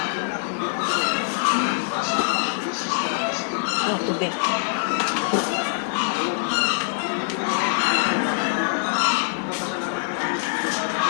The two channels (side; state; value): right; silent; digital silence